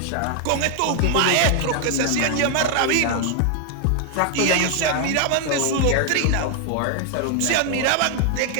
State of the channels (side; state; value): both; different; correlation 0.00